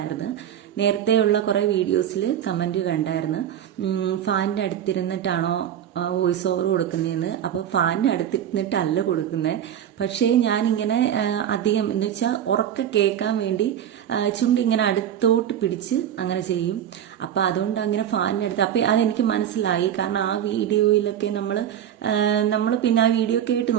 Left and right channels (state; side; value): quieter; left; 10.0 dB